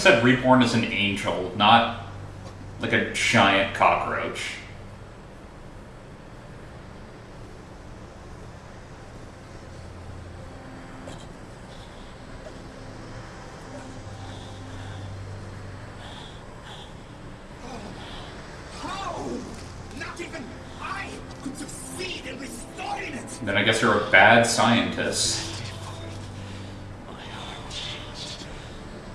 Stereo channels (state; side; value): identical; both; correlation 1.00